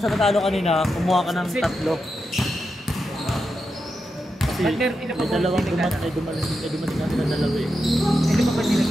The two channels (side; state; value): both; normal; correlation 0.87